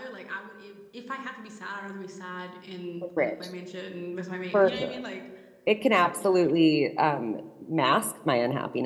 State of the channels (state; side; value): identical; both; correlation 1.00